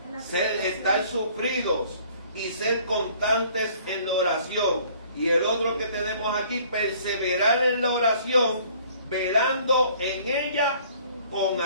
estar sufridos y ser constantes en la oración. Y el otro que tenemos aquí, perseverar en la oración, velando en ella con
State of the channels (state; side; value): inverted; both; correlation -0.56